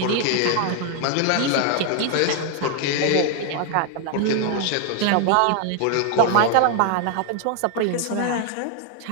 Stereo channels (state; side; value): different; both; correlation 0.00